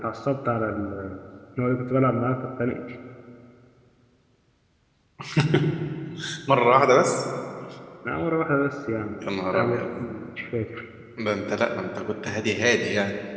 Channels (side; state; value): both; identical; correlation 1.00